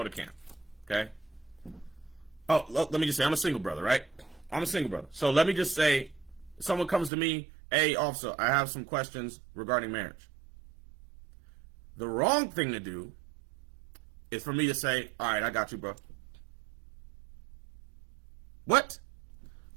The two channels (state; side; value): drops out; left; at 7.1 s